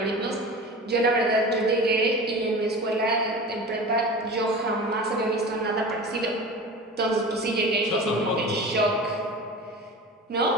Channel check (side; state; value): both; normal; correlation 0.34